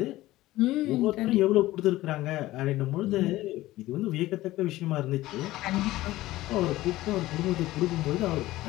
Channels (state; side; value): quieter; right; 16.8 dB